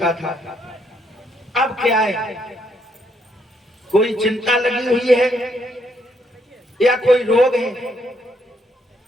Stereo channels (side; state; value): both; normal; correlation 0.73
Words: था, अब क्या है? कोई चिंता लगी हुई है या कोई रोग है